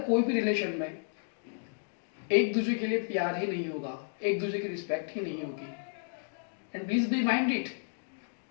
कोई भी रिलेशन में एक दूसरे के लिए प्यार ही नहीं होगा, एक दूसरे की रिस्पेक्ट ही नहीं होगी, and please be mind it,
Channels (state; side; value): silent; right; digital silence